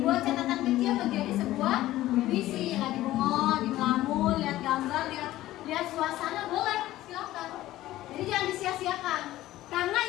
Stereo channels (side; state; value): right; quieter; 15.4 dB